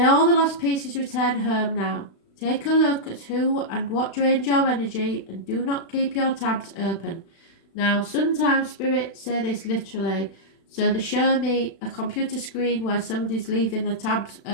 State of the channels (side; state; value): right; late; 36 ms